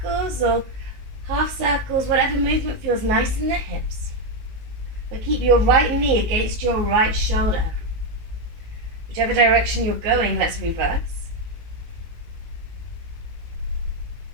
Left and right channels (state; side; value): late; left; 19 ms